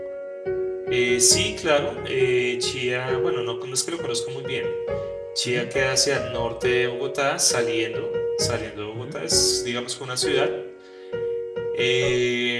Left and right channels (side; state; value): both; identical; correlation 1.00